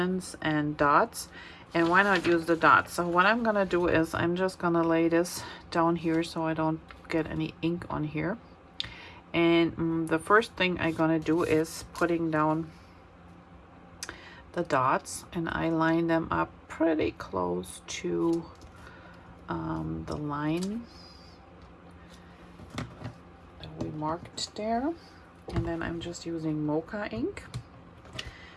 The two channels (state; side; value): identical; both; correlation 1.00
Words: and dots, and why not use the dots? So what I'm gonna do is I'm just gonna lay this down here so I don't get any ink on here. And the first thing I'm gonna do is putting down the dots, and I line them up pretty close to the line that we marked there. And then I'm just using Mocha ink